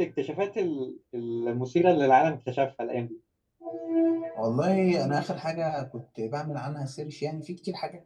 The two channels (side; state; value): both; identical; correlation 1.00